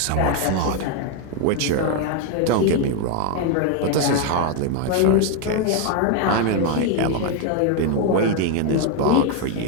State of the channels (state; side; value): different; both; correlation 0.01